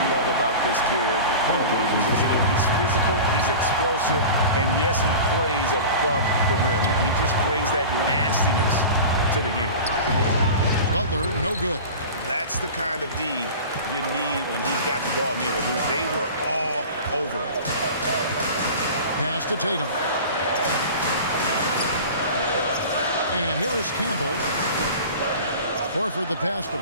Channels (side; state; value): both; inverted; correlation -0.35